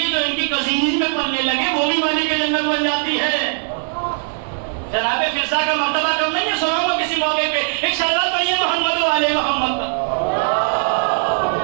جو ان کی کزینز میں پلنے لگے وہ بھی مالک جنت بن جاتی ہے. جناب فرزا کا مرتبہ کم نہیں ہے, سناؤں گا کسی موقع پہ. ایک شہزاد پڑھیے محمد و آل محمد کا.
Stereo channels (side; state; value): left; silent; digital silence